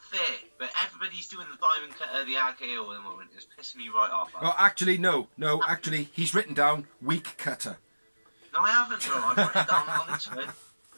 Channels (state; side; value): inverted; both; correlation -1.00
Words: fair. But everybody's doing the diamond cutter, the RKO at the moment. It's pissing me right off. Well, actually, no. Actually, he's written down weak cutter. No, I haven't, bro. I've written down on this one.